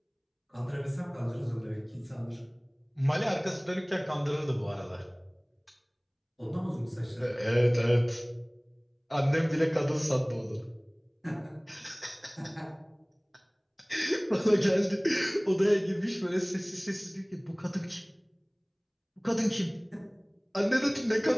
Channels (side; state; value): both; identical; correlation 1.00